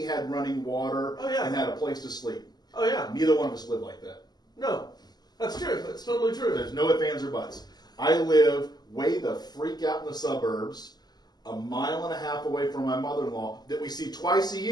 had running water and had a place to sleep. Oh, yeah. Neither one of us live like that. No. That's true. That's totally true. There's no ifs, ands, or buts. I live way the freak out in the suburbs. a mile and a half away from my mother-in-law that we see twice a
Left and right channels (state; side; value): late; right; 0.20 ms